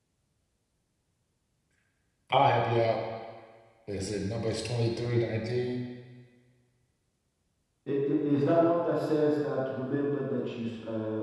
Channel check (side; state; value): both; identical; correlation 1.00